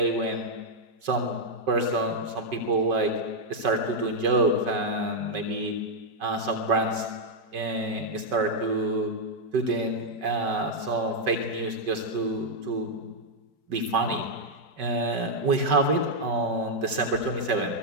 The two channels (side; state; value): left; late; 5.3 ms